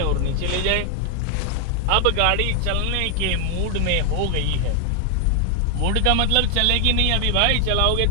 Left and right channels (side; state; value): both; different; correlation 0.00